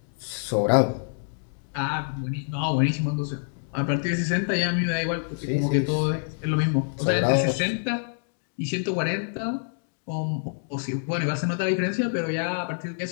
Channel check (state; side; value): silent; right; digital silence